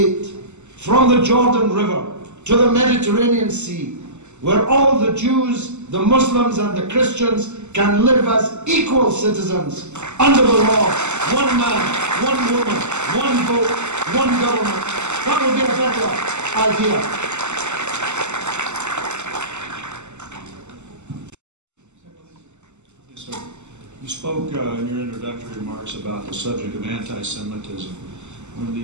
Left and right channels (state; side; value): late; left; 0.83 ms